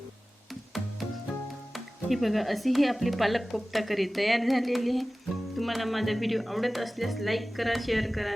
ही बघा, अशी ही आपली पालक कोफ्ता करी तयार झालेली आहे. तुम्हाला माझा व्हिडिओ आवडत असल्यास लाईक करा, शेअर करा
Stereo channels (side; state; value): both; normal; correlation 0.97